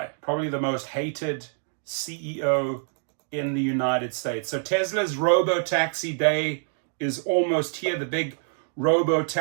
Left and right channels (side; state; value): left; silent; digital silence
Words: Probably the most hated CEO in the United States. So Tesla's Robotaxi day is almost here. The big